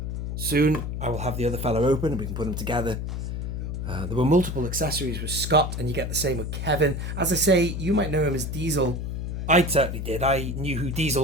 Soon, I will have the other fellow open, and we can put them together. There were multiple accessories with Scott, and you get the same with Kevin. As I say, you might know him as Diesel. I certainly did. I knew who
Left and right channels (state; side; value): noise; left; hum, 4 dB below the sound